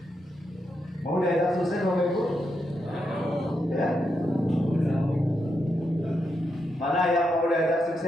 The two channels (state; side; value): normal; both; correlation 0.83